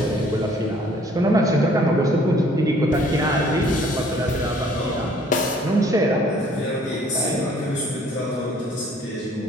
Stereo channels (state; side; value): normal; both; correlation 0.58